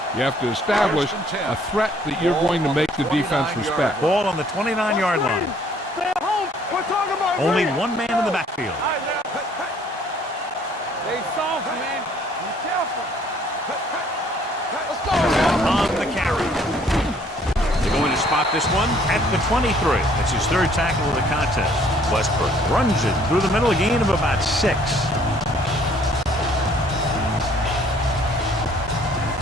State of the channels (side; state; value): both; normal; correlation 0.60